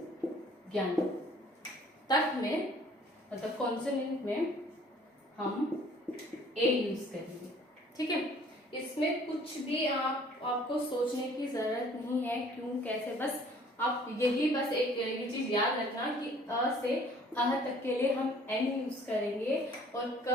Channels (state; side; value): normal; both; correlation 0.55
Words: ज्ञान तक में, मतलब कॉन्सोनेंट में हम ए यूज करेंगे, ठीक है। इसमें कुछ भी आपको सोचने की जरूरत नहीं है, क्यों कैसे, बस आप यही बस एक ये चीज याद रखना कि अ से अह तक के लिए हम एन यूज करेंगे और